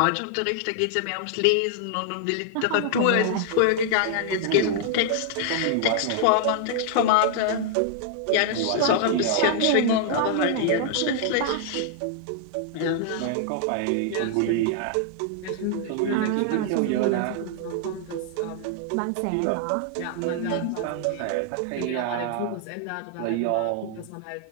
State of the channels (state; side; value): different; both; correlation 0.00